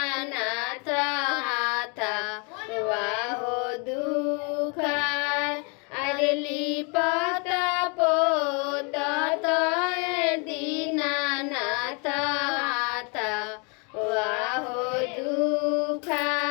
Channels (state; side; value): quieter; right; 34.3 dB